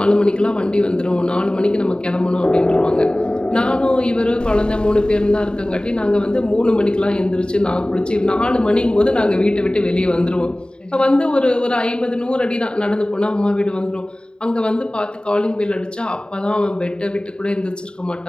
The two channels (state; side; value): late; right; 0.050 ms